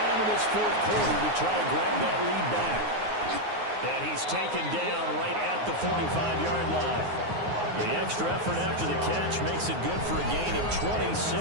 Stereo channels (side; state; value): left; late; 9.5 ms